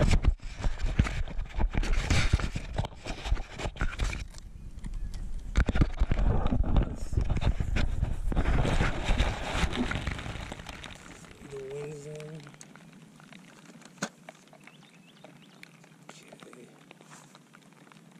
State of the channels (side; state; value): both; identical; correlation 1.00